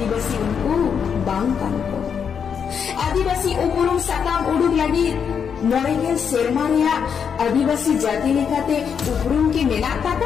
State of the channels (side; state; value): right; quieter; 7.1 dB